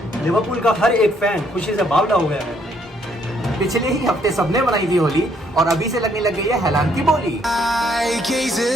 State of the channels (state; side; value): normal; both; correlation 0.69